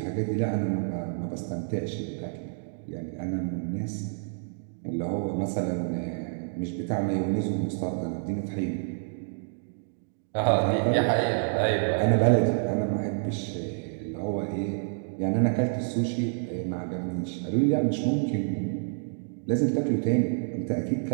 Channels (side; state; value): left; silent; digital silence